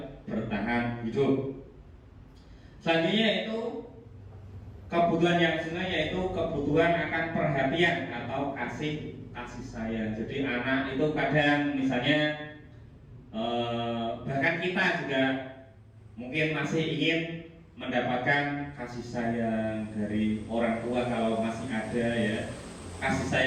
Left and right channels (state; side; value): identical; both; correlation 1.00